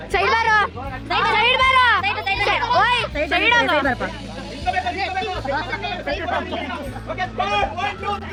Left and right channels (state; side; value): identical; both; correlation 1.00